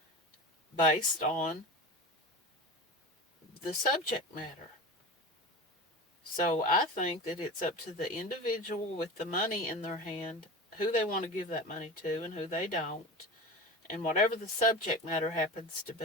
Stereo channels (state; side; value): normal; both; correlation 0.30